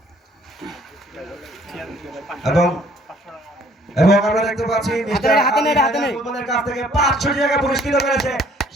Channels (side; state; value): both; normal; correlation 0.59